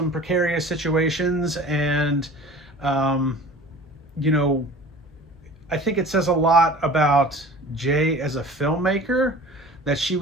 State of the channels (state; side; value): normal; both; correlation 0.42